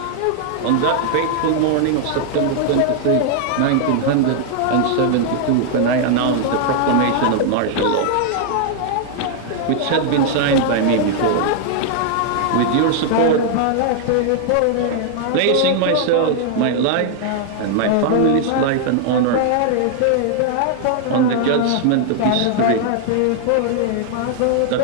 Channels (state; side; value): different; both; correlation 0.00